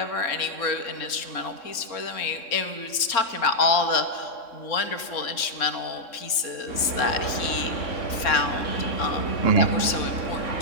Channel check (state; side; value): late; right; 3.6 ms